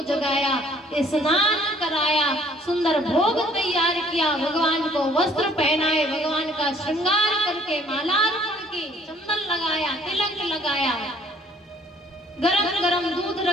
जगाया, स्नान कराया, सुंदर भोग तैयार किया, भगवान को वस्त्र पहनाए, भगवान का श्रृंगार करके माला अर्पण की, चंदन लगाया, तिलक लगाया, गरम गरम दूध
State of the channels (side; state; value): both; normal; correlation 0.59